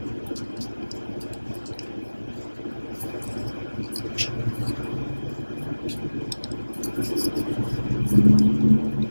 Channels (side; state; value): both; inverted; correlation -1.00